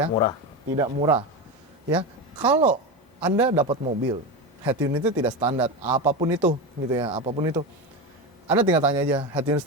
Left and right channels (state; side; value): normal; both; correlation 0.19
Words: murah. Tidak murah. Ya, kalau Anda dapat mobil, head unitnya tidak standar, apapun itu, gitu ya, apapun itu. Anda tinggal tanya aja, head unit